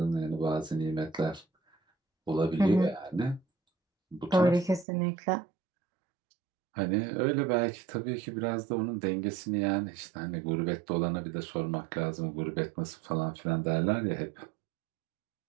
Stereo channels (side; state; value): left; drops out; at 4.9 s